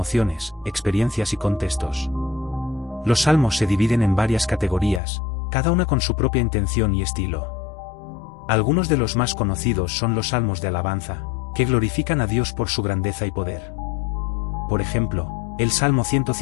experiencias y contextos. Los Salmos se dividen en varias categorías, cada una con su propia intención y estilo. Algunos de los más conocidos son los salmos de alabanza, que glorifican a Dios por su grandeza y poder. Por ejemplo, el Salmo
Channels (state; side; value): drops out; right; at 5.0 s